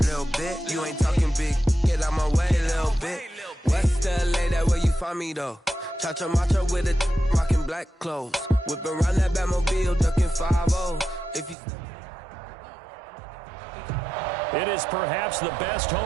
bit. You ain't talking big. Get out my way, little bit. West LA, that where you find me though. Cha-cha macha with a rockin' black clothes. Whip around that Batmobile, ducking 5-0. If you. It is perhaps the best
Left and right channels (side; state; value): left; drops out; at 11.6 s